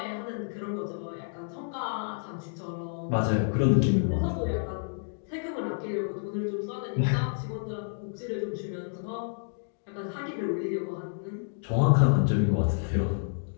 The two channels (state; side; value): silent; right; digital silence